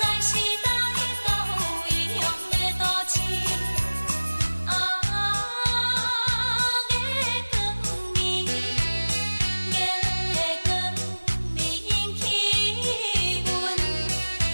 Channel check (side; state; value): both; inverted; correlation -1.00